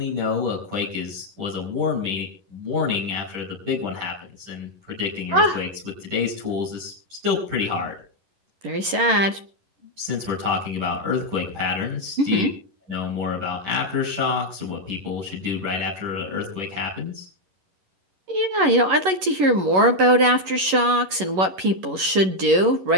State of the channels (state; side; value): late; left; 11 ms